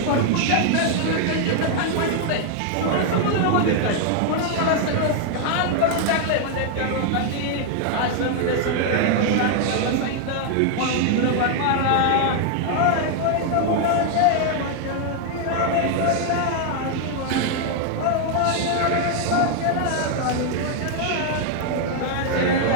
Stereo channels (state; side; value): different; both; correlation 0.00